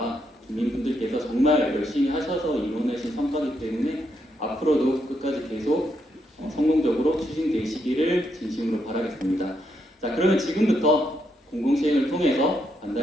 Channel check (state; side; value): normal; both; correlation 0.79